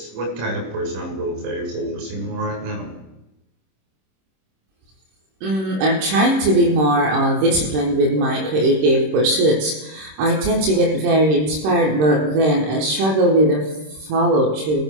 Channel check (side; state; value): left; late; 26 ms